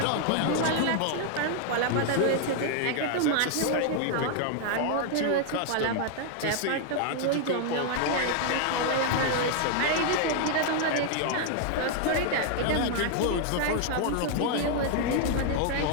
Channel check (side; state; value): both; different; correlation 0.00